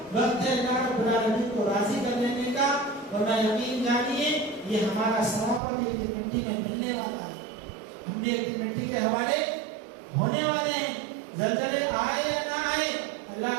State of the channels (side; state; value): left; drops out; at 5.6 s